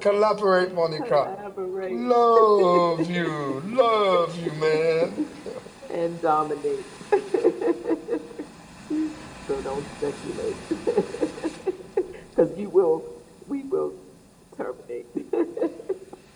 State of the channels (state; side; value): identical; both; correlation 1.00